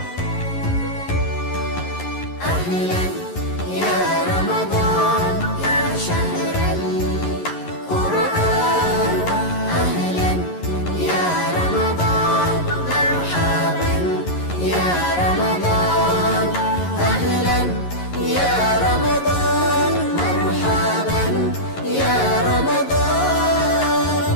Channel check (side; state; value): right; late; 11 ms